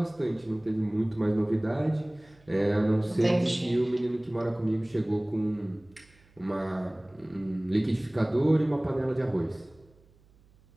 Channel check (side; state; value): right; noise; hum, 30 dB below the sound